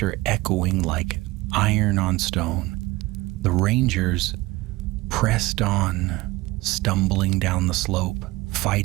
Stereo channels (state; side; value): quieter; left; 20.1 dB